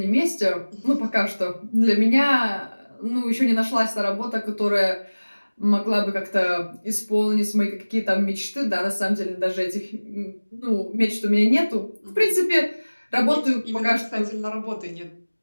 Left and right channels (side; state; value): both; inverted; correlation -1.00